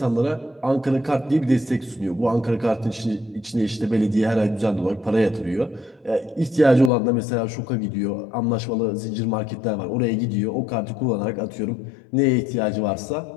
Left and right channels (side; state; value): right; drops out; at 6.9 s